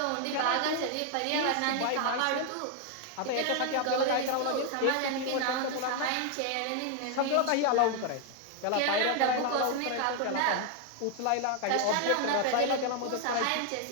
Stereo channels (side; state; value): both; different; correlation 0.00